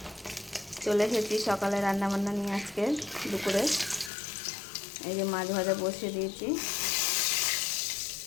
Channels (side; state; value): right; drops out; at 4.1 s